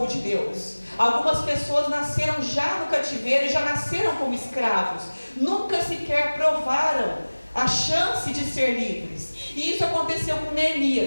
de Deus. Algumas pessoas nasceram já no cativeiro e já nasceram como escravos. Nunca sequer provaram a chance de ser livres. E isso aconteceu com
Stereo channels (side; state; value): both; inverted; correlation -1.00